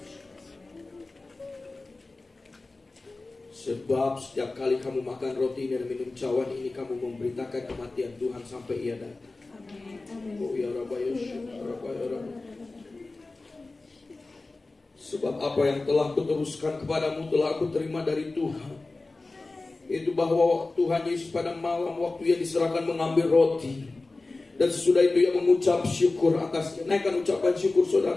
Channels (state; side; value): quieter; right; 3.3 dB